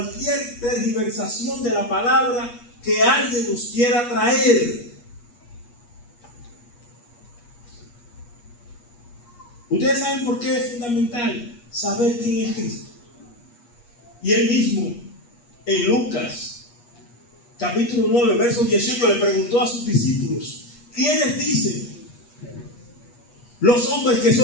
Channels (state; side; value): late; right; 8.4 ms